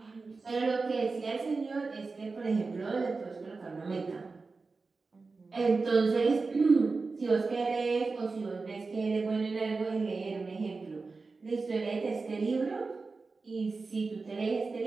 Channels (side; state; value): left; quieter; 4.1 dB